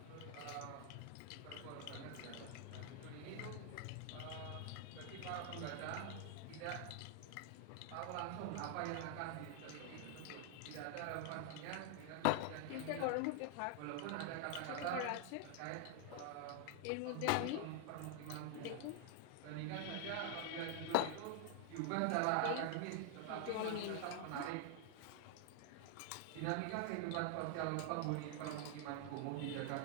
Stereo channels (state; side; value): different; both; correlation 0.00